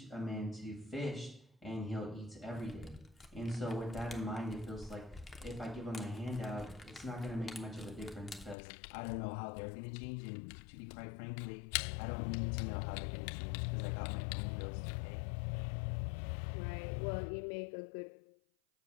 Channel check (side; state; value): right; drops out; at 8.6 s